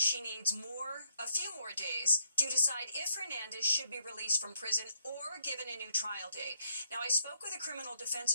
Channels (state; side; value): inverted; both; correlation -0.72